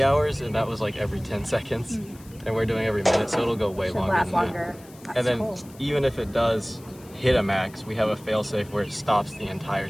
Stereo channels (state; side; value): noise; left; hiss, 24 dB below the sound